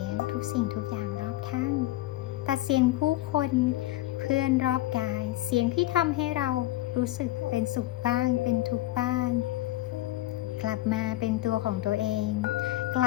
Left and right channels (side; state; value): right; quieter; 16.5 dB